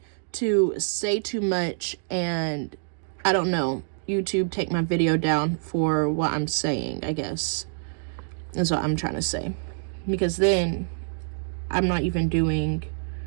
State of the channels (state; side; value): silent; left; digital silence